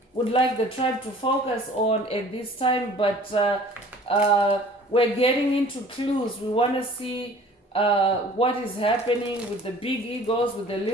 would like the tribe to focus on at this time. But we're getting into clues. We want to see what is happening with the big egos, with the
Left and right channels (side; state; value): both; normal; correlation 0.49